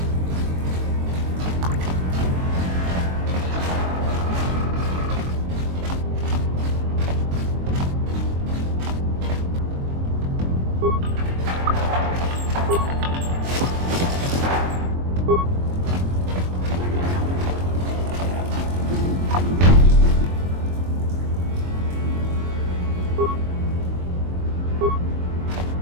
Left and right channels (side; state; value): left; late; 23 ms